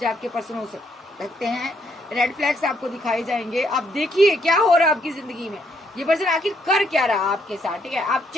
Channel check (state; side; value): normal; both; correlation 0.72